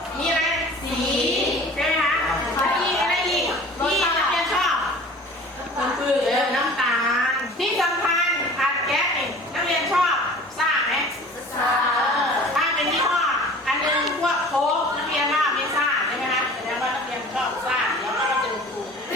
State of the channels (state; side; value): normal; both; correlation 0.44